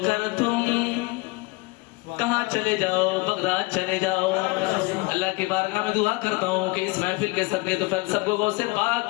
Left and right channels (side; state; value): right; quieter; 24.2 dB